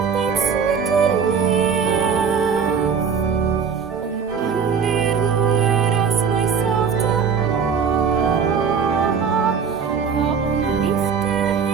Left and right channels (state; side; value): quieter; left; 6.3 dB